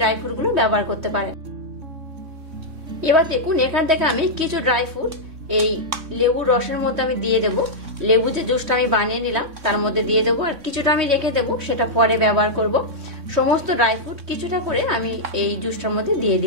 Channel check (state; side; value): late; left; 3.6 ms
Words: ফ্রুট গুলো ব্যবহার করতে পারেন। এবার দেখুন এখান থেকে আমি কিছু ড্রাই ফ্রুট এই লেবুর রসের মধ্যে আমি দিয়ে দেবো। লেবু যে জুসটা আমি বানিয়ে নিলাম তার মধ্যে দিয়ে দেবো, আর কিছুটা আমি রেখে দেবো, সেটা পরে ব্যবহার করব। সমস্ত ড্রাই ফ্রুট কিছুটা করে আমি এই জুসটার মধ্যে দিয়ে